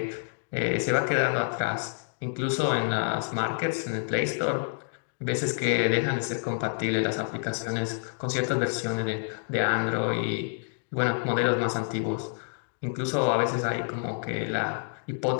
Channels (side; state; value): right; silent; digital silence